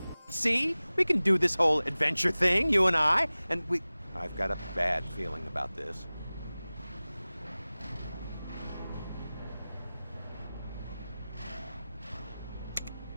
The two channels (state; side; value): inverted; both; correlation -0.98